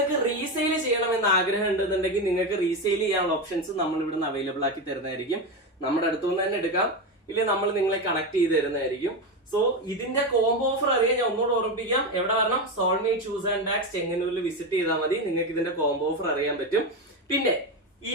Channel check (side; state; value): both; normal; correlation 0.15